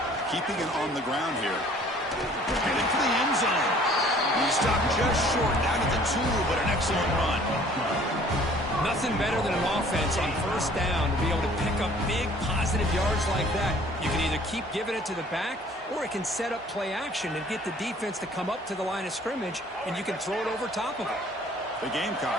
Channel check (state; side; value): normal; both; correlation 0.54